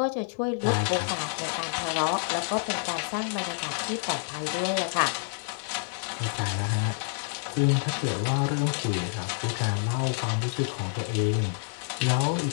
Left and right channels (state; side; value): silent; right; 59 dB below the other